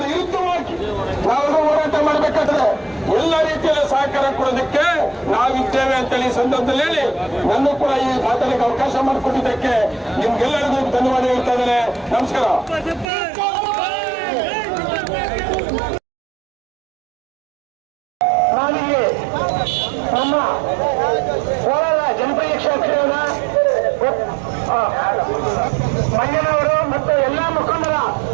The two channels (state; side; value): drops out; left; at 13.1 s